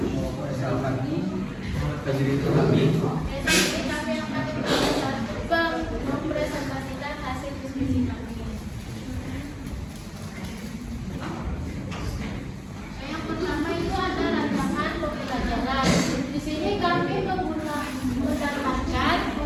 saya Alfani, Fajri Turami. Jadi kami akan mempresentasikan hasil diskusi kami. Yang pertama itu ada rancangan pembelajaran. Di sini kami mendapatkan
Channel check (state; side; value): identical; both; correlation 1.00